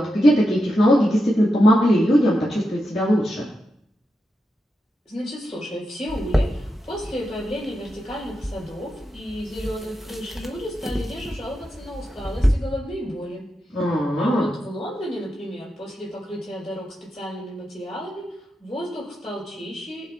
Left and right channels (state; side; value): normal; both; correlation 0.87